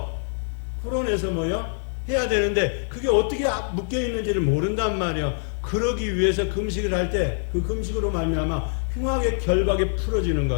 뭐요? 해야 되는데 그게 어떻게 묶여 있는지를 모른단 말이에요. 그러기 위해서 금식을 할 때 그 금식으로 말미암아 흉악의 결박이 풀어지는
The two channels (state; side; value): silent; right; digital silence